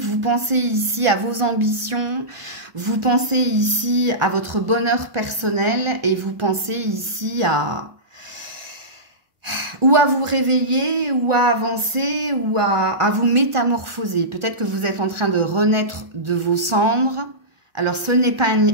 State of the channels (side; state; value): left; late; 1.4 ms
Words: pensez ici à vos ambitions, vous pensez ici à votre bonheur personnel et vous pensez ici à vous réveiller, ou à avancer, ou à vous métamorphoser. Peut-être que vous êtes en train de renaître de vos cendres. Alors, ce n'est pas